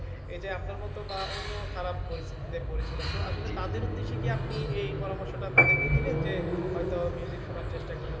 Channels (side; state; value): both; identical; correlation 1.00